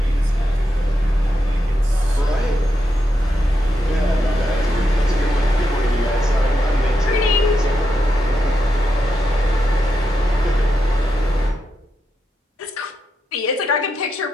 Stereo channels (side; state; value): both; normal; correlation 0.84